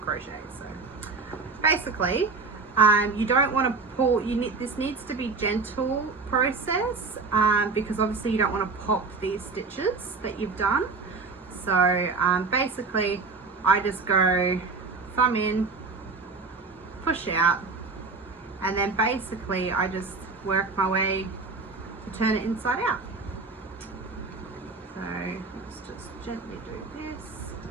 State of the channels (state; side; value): quieter; left; 4.3 dB